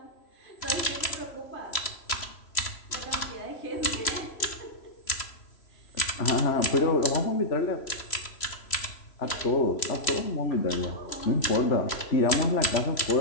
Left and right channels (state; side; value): late; right; 3.0 ms